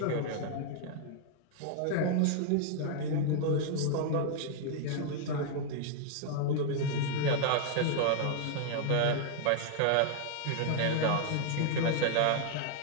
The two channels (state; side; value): different; both; correlation 0.00